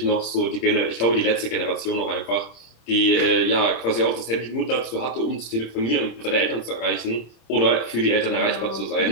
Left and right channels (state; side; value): late; right; 27 ms